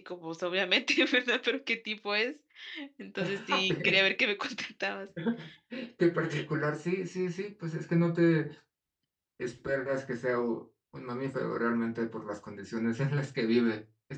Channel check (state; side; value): identical; both; correlation 1.00